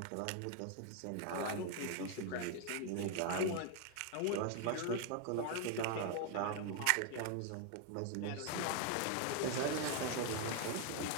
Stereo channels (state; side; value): different; both; correlation 0.01